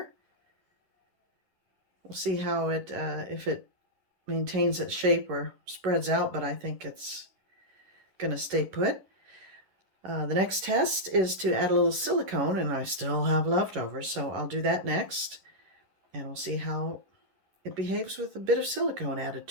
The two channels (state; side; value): late; left; 11 ms